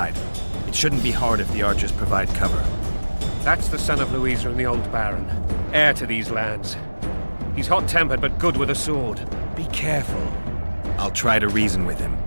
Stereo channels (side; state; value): both; inverted; correlation -1.00